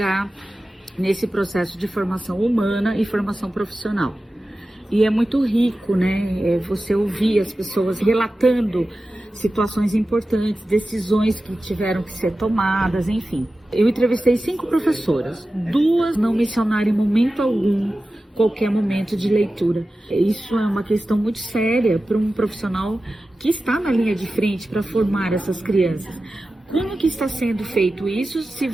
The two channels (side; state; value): both; normal; correlation 0.94